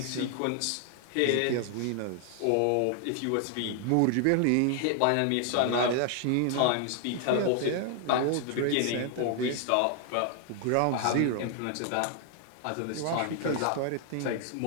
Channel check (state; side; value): different; both; correlation 0.00